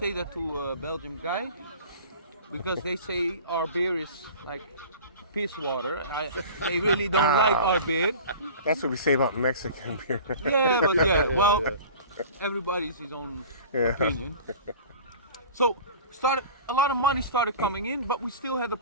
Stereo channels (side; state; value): both; inverted; correlation -0.40